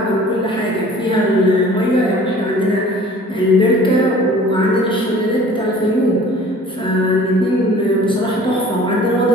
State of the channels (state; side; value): normal; both; correlation 0.48